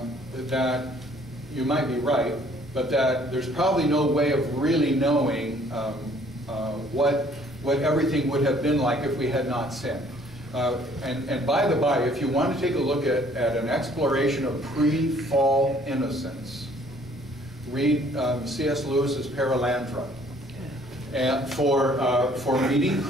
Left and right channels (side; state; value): both; normal; correlation 0.59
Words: that you might be right, but that there's probably no way of really knowing what everything would have been like if we had not sinned. And by the by, if you want to take a look at an exploration of pre-fall innocence, read C.S. Lewis's Paralandra. And for meeting